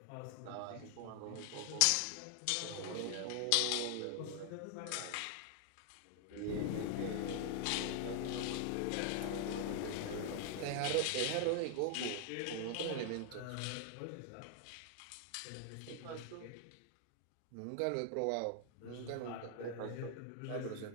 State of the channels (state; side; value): different; both; correlation 0.00